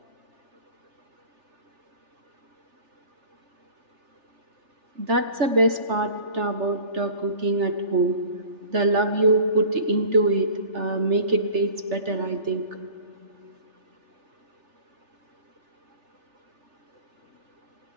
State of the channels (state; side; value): late; left; 3.4 ms